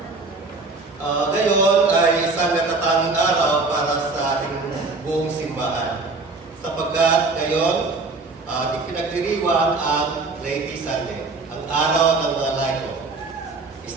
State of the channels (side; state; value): left; quieter; 3.7 dB